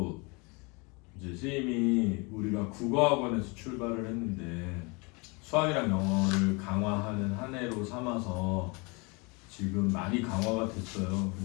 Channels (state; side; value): quieter; right; 29.2 dB